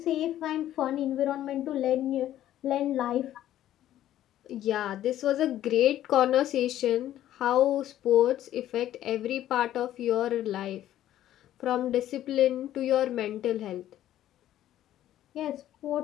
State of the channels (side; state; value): right; quieter; 12.6 dB